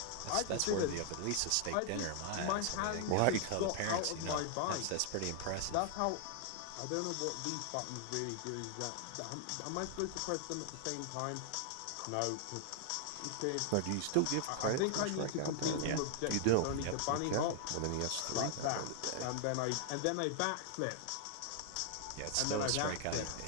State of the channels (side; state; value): both; different; correlation 0.00